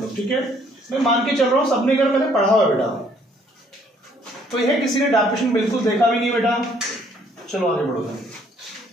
लोग। ठीक है, मैं मान के चल रहा हूं सबने अगर मैंने पढ़ा हुआ बेटा, तो यह किसी ने डेफिनेशन बिल्कुल देखा भी नहीं बेटा। चलो आगे बढ़ो।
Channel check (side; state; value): both; normal; correlation 0.64